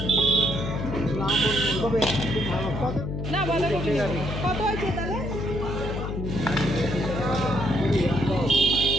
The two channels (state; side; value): noise; left; hum, 4 dB below the sound